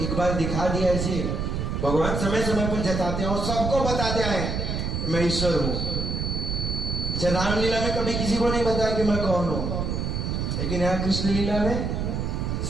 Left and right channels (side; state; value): right; noise; rumble, 1 dB below the sound